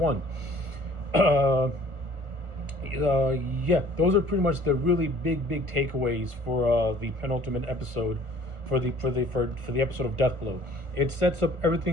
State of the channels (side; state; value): left; late; 1.4 ms